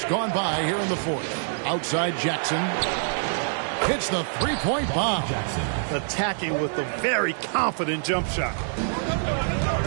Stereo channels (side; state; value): left; silent; digital silence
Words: gone by here in the fourth. Outside Jackson. Hits the three-point bomb. Attacking with a very confident jump shot.